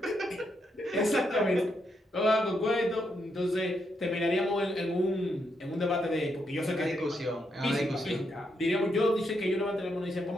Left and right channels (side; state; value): both; normal; correlation 0.80